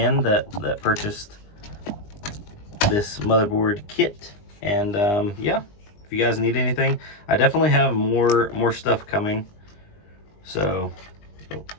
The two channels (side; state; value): right; late; 20 ms